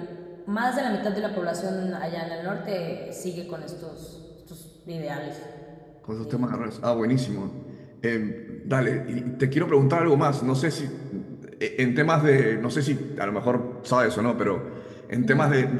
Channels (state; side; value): identical; both; correlation 1.00